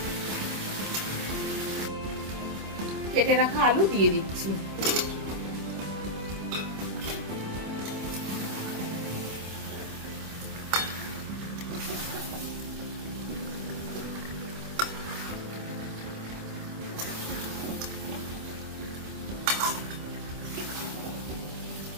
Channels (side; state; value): left; late; 26 ms